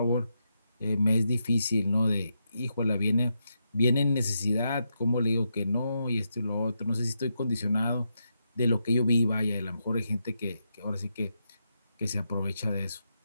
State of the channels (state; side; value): inverted; both; correlation -0.84